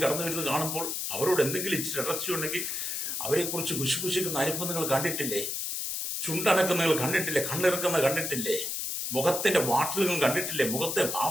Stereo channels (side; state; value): left; noise; hiss, 3 dB below the sound